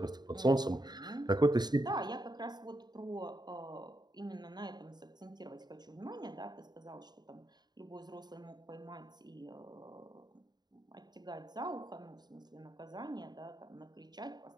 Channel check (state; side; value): late; left; 0.20 ms